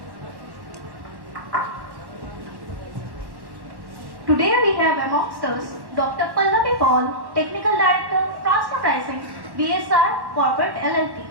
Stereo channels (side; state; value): left; late; 1.1 ms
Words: Today we have amongst us Dr. Pallavi Paul, Technical Director, Transfer Pricing, BSR Corporate LLP.